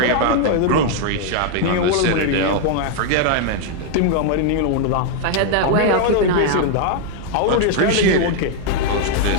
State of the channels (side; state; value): both; different; correlation 0.00